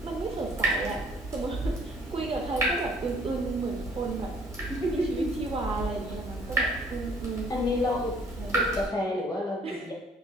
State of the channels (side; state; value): both; normal; correlation 0.59